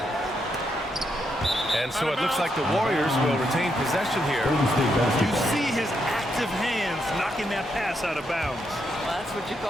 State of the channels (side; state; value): both; normal; correlation 0.80